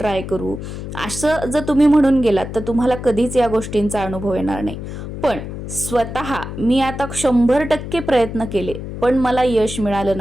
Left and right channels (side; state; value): left; noise; hum, 8 dB below the sound